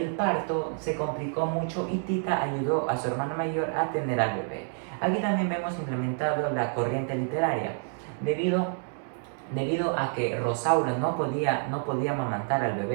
parto se complicó mucho y Tita ayudó a su hermana mayor a tener al bebé. Aquí también vemos implementado la corriente literaria, debido a que Rosaura no podía amamantar al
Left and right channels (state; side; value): silent; left; 59 dB below the other